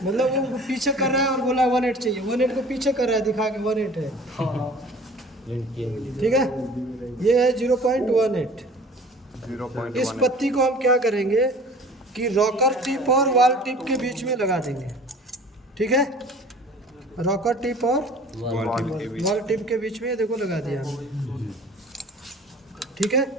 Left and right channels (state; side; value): normal; both; correlation 0.46